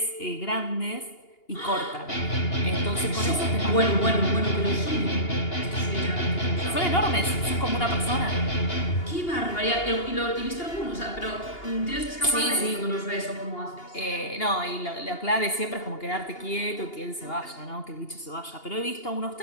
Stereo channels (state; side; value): late; right; 2.8 ms